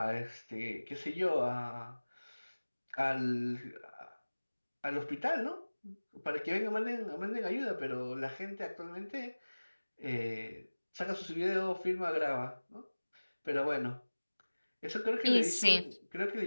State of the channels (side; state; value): both; inverted; correlation -1.00